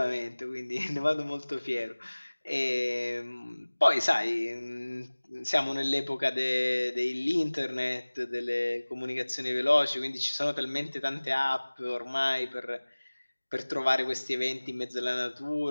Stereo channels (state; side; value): inverted; both; correlation -1.00